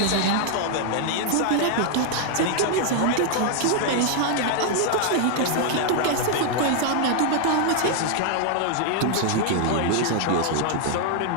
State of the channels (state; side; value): different; both; correlation 0.00